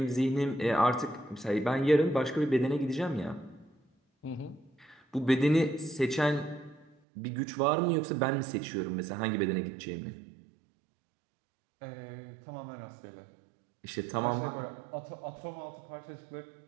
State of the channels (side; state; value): left; drops out; at 7.0 s